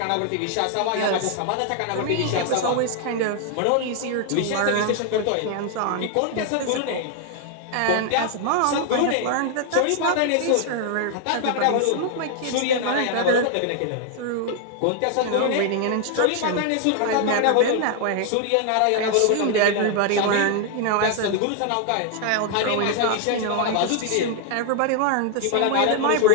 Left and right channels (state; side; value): different; both; correlation 0.00